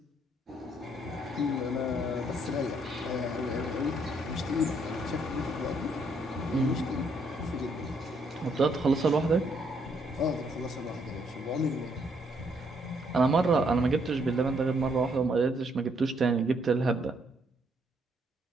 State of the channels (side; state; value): both; normal; correlation 0.71